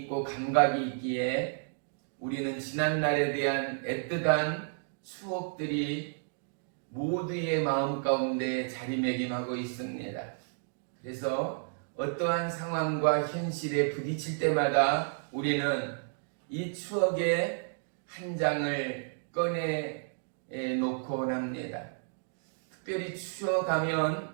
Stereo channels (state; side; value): silent; left; digital silence